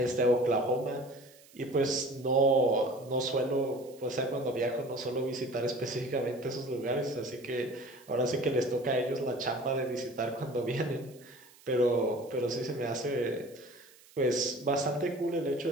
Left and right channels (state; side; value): noise; right; hiss, 25 dB below the sound